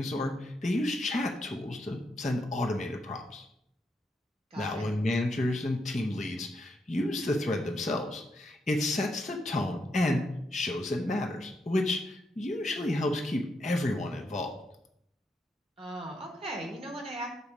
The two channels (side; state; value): both; normal; correlation 0.80